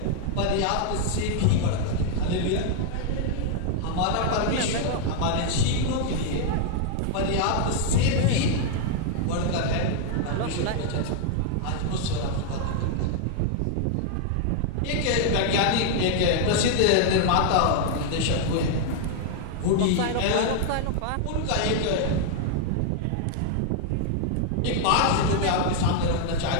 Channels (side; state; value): both; different; correlation 0.00